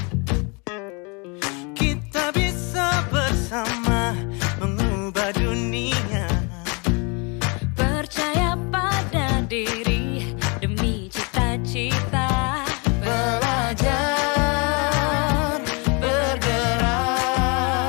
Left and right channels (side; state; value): right; quieter; 31.9 dB